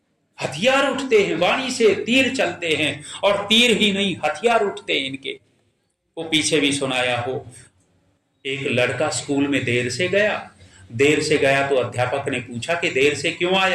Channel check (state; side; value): identical; both; correlation 1.00